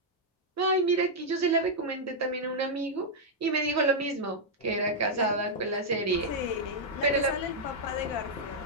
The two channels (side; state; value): both; normal; correlation -0.04